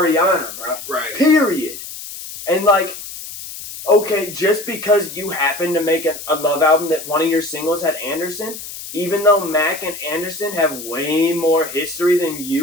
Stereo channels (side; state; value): left; noise; hiss, 11 dB below the sound